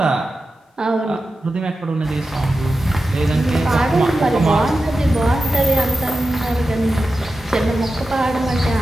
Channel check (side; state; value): both; normal; correlation 0.92